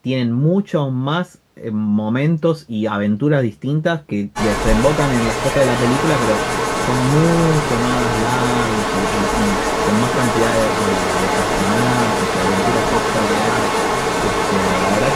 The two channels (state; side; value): identical; both; correlation 1.00